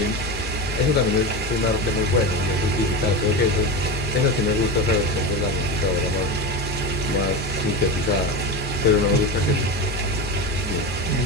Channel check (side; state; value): both; normal; correlation 0.22